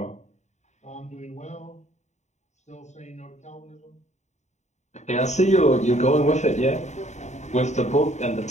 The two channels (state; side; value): late; right; 0.34 ms